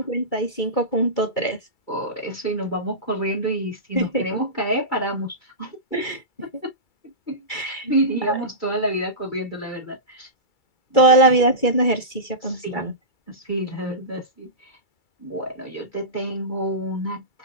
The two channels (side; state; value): right; late; 2.3 ms